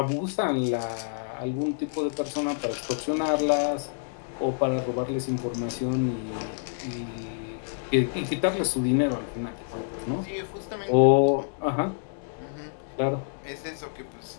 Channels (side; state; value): right; silent; 60 dB below the other